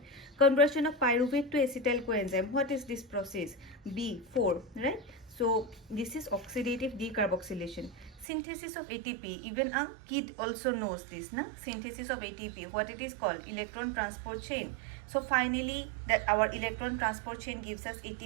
Conversion of pyruvate to acetyl coenzyme. What is this process? B4, right? So this is oxidative decarboxylation. Synthesis of ATP, even a kid also knows this, na? Synthesis of ATP, what it is called? Electron transport chain. So finally that our electron transport chain gives us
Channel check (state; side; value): drops out; left; at 8.2 s